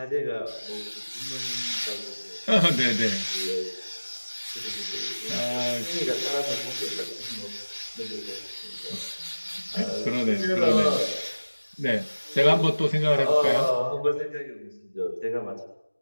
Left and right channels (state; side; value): inverted; both; correlation -1.00